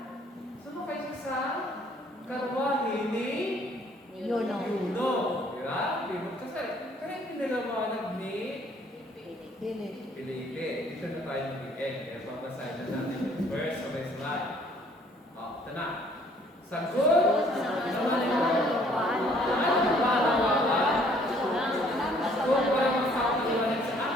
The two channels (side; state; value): both; normal; correlation 0.60